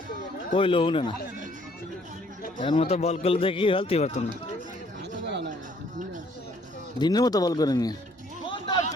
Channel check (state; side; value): normal; both; correlation 0.63